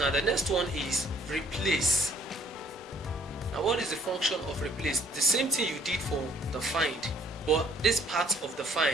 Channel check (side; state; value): both; normal; correlation 0.60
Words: the next one is replace. Now what is the function of replace? The same thing you did for the find, but this part of the